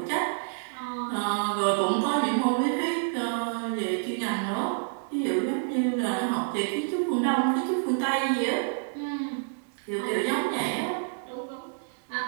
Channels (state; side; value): silent; left; digital silence